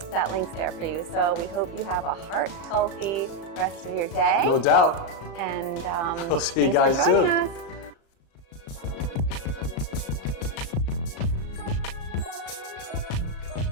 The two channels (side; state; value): right; late; 36 ms